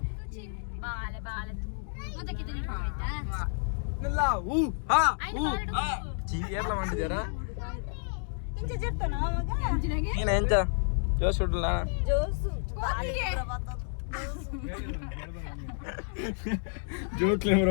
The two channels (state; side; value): silent; right; 58 dB below the other